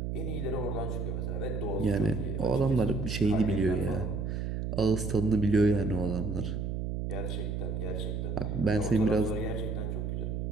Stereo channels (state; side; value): noise; right; hum, 2 dB below the sound